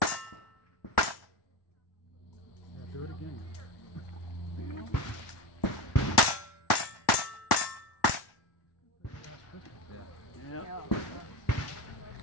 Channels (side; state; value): right; late; 1.1 ms